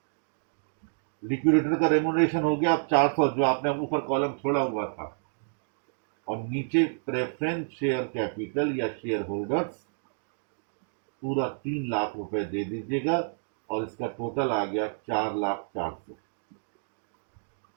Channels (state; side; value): silent; left; digital silence